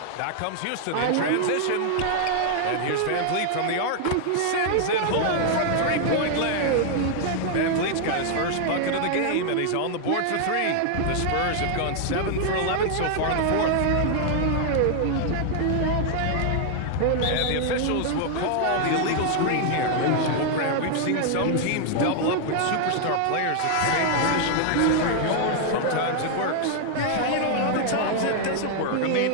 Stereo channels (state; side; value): different; both; correlation 0.00